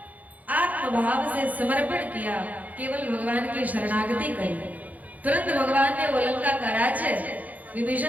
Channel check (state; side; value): late; left; 0.078 ms